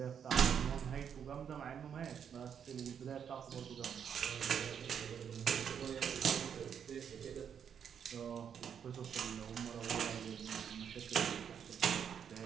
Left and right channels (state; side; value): quieter; left; 7.9 dB